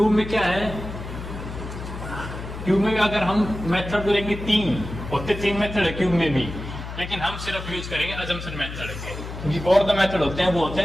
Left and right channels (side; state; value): left; noise; hum, 9 dB below the sound